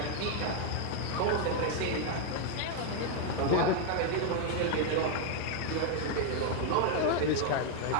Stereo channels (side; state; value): both; different; correlation 0.01